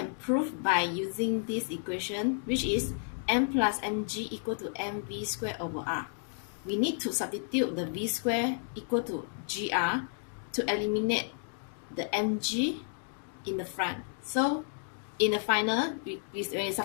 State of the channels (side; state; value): right; silent; digital silence